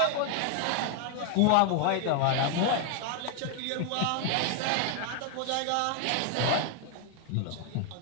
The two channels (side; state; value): both; different; correlation 0.01